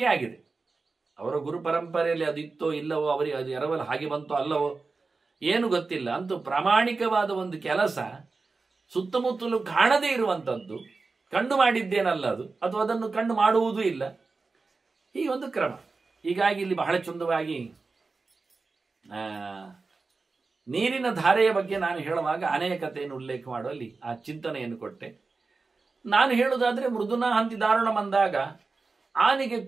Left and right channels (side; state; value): left; quieter; 4.0 dB